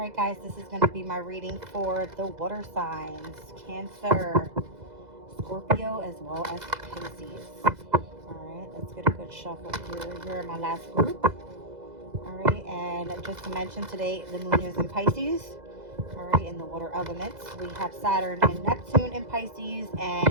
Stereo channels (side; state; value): left; late; 2.0 ms